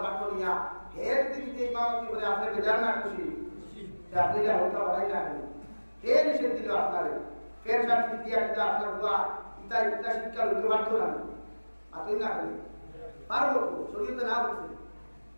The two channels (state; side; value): inverted; both; correlation -1.00